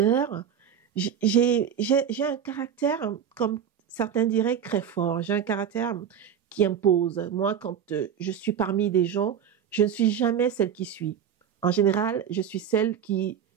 J'ai un caractère, comme certains diraient, très fort. J'ai un caractère qui impose. Moi, quand je suis parmi des gens, je ne suis jamais celle qui suit. En général, je suis celle qui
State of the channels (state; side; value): quieter; left; 8.3 dB